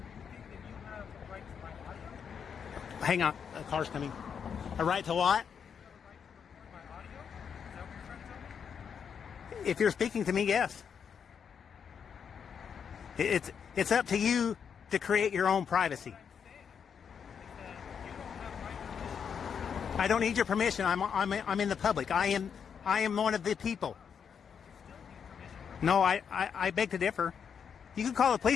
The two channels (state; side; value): quieter; right; 7.1 dB